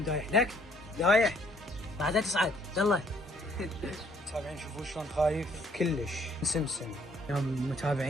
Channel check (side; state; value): both; normal; correlation 0.64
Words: دايح لك دايح بعدين تصعد. يلا متابعين شوفوا شلون خايف كلش. سمسم يا